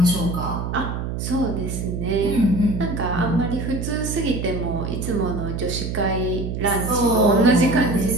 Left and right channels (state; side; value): noise; right; hum, 4 dB below the sound